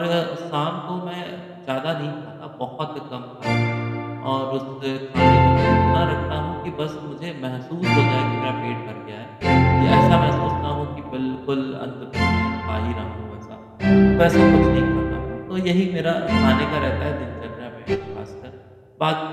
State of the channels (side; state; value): both; identical; correlation 1.00